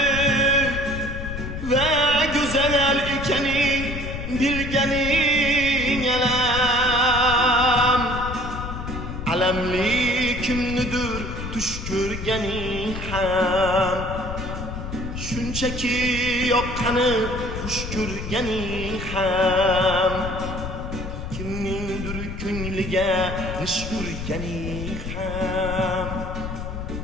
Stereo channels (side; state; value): left; noise; rumble, 7 dB below the sound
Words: va go'zal ekaning bilganing alam. Alamli kimnidir tush ko'rganing ham, shunchaki yoqqani xush ko'rganing ham, kimningdir ko'ngliga nish urganing ham,